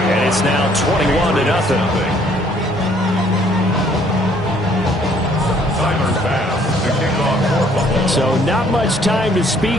And it's now 21-0. So not much time to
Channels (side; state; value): both; normal; correlation 0.62